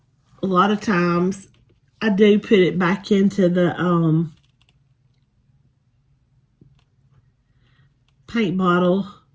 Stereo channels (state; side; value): identical; both; correlation 1.00